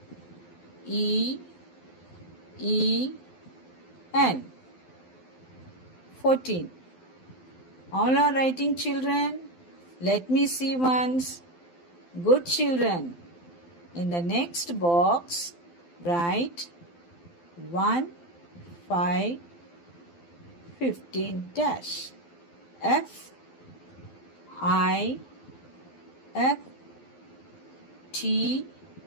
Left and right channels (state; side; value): late; right; 12 ms